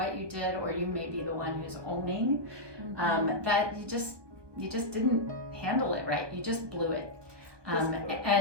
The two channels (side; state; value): left; late; 1.2 ms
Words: you did, or you may be the one who's owning that you just didn't handle it right. You just blew it.